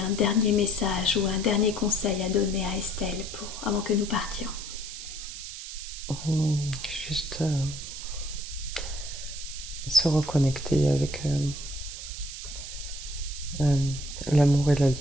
dernier message ou un dernier conseil à donner à Estelle avant que nous partions? Juste se reconnecter avec l'amour et la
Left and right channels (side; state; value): right; noise; hiss, 9 dB below the sound